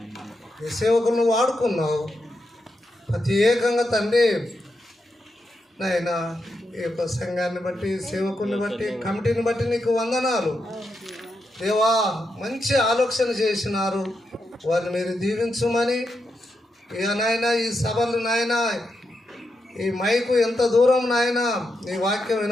నీ సేవకులను వాడుకున్నావు ప్రత్యేకంగా తండ్రి. నాయన ఈ యొక్క సంఘాన్ని బట్టి, సేవకుల్ని బట్టి, కమిటీని బట్టి నీకు వందనాలు దేవా. మంచి ఆలోచన చేసినారు, వారిని మీరు దీవించమని. ఇక నాయన ఈ సభలు నాయన, ఈ మైకు ఎంత దూరం నాయన నీ వాక్యం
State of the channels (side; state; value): both; normal; correlation 0.85